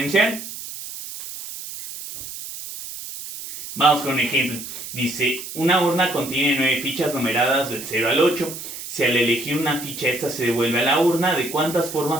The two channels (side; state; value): right; noise; hiss, 10 dB below the sound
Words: Vamos con un ejemplo. Dice, una urna contiene 9 fichas numeradas del 0 al 8. Si al elegir una ficha esta se devuelve a la urna, ¿de cuántas